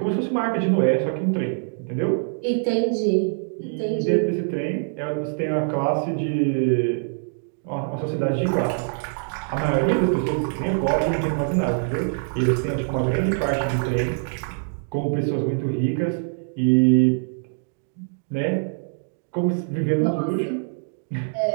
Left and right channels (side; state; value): left; silent; digital silence